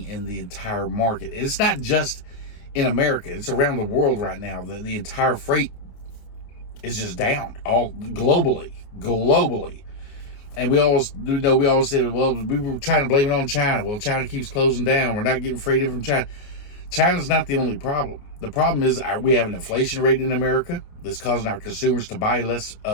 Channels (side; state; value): right; late; 28 ms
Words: in the entire market. It's not just in America. It's around the world right now. The entire freight is just down, all globally. And we always say, well, we were trying to blame it on China. Well, China keeps closing down. We're not getting freight in from China. China's not the only problem. The problem is we have an inflation rate in America that's causing our consumers to buy less